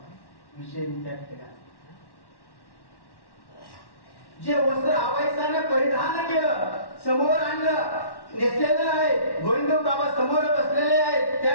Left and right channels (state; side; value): late; right; 1.1 ms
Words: विषय त्या ठिकाणी जे वस्त्र आबाईसाने परिधान केलं, समोर आणलं, नेसलेलं आहे, गोविंदबाबा समोर बसलेले आहेत,